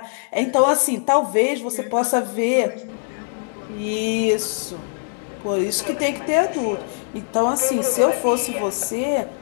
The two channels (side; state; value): right; silent; 64 dB below the other